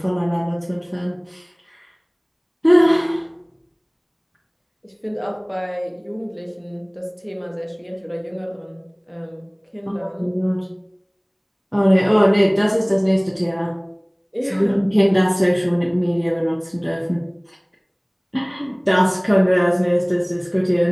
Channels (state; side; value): identical; both; correlation 1.00